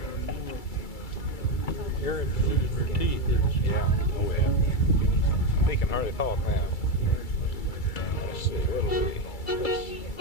Erin's losing her teeth, isn't she? Yeah. Oh yeah. He can hardly talk now. Let's see. What'll we?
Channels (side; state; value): right; late; 2.3 ms